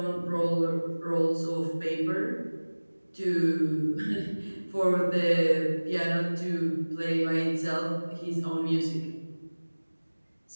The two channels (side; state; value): both; inverted; correlation -1.00